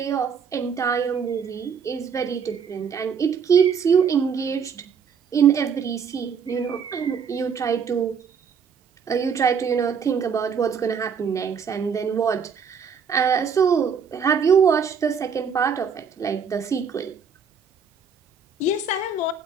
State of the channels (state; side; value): quieter; left; 6.2 dB